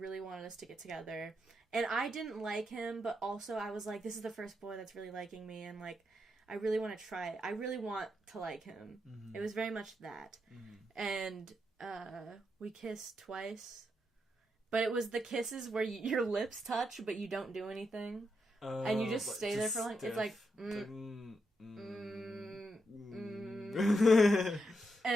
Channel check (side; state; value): both; normal; correlation 0.82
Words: wanted us to get together. And I didn't like him, but also I was like, this is the first boy that's really liking me, and, like, I really want to try it. I really want to like him. Mm-hmm. It was very much that. Mm-hmm. And we kissed twice. But it was the kisses where your lips touch, but you don't do anything. And you just stay there for like... It's like...